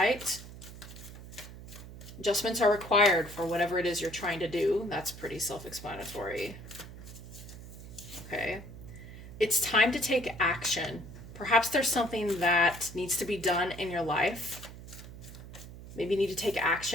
Adjustments are required for whatever it is you're trying to do. That's pretty self-explanatory. Okay. It's time to take action. Perhaps there's something that needs to be done in your life. Maybe you need to take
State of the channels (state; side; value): noise; right; hum, 14 dB below the sound